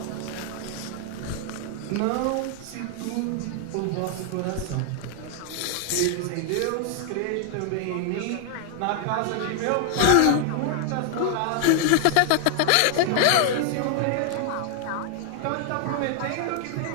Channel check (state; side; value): different; both; correlation 0.00